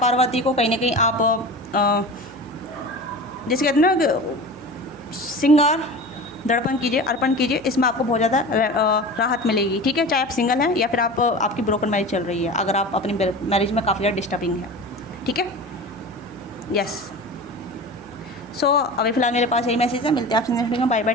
को कहीं ना कहीं आप जैसे कहते हैं ना श्रृंगार दर्पण कीजिए, अर्पण कीजिए, इसमें आपको बहुत ज़्यादा राहत मिलेगी, ठीक है। चाहे आप सिंगल हैं या फिर आपकी ब्रोकन मैरिज चल रही है, अगर आप अपनी मैरिज में काफ़ी ज़्यादा डिस्टर्बिंग है, ठीक है, यस। सो अभी फिलहाल मेरे पास यही मैसेज है। मिलते हैं आपसे नेक्स्ट वीडियो में। बाय बाय,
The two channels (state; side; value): noise; right; hum, 25 dB below the sound